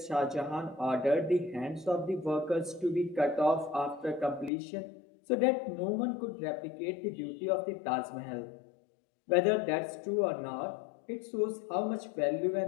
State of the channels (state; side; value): drops out; right; at 4.5 s